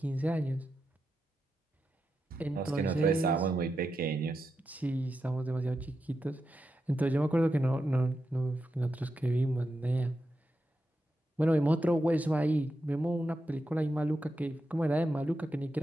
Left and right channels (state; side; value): normal; both; correlation 0.88